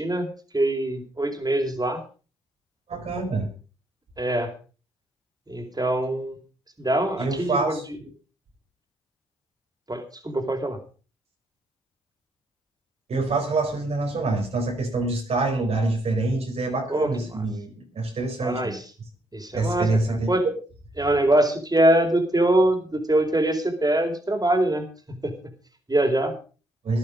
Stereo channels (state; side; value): normal; both; correlation 0.73